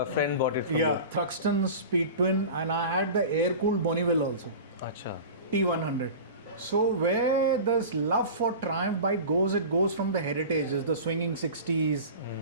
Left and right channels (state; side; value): inverted; both; correlation -0.34